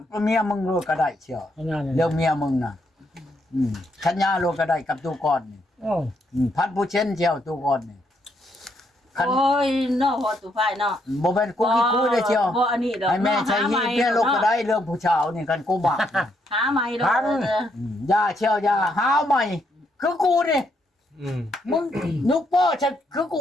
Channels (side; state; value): both; normal; correlation 0.75